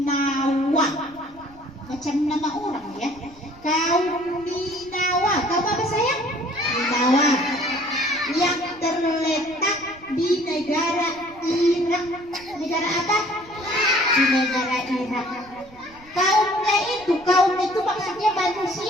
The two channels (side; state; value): right; noise; rumble, 24 dB below the sound